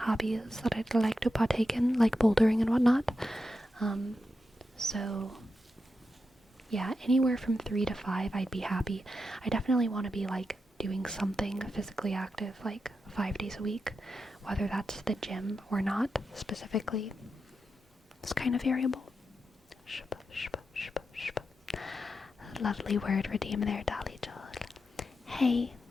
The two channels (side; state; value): both; normal; correlation 0.88